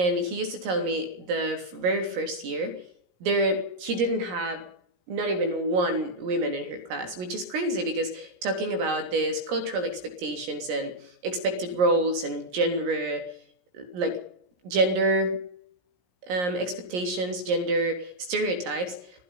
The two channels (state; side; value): late; left; 17 ms